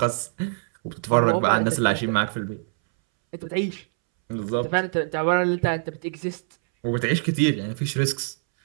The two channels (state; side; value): silent; left; 63 dB below the other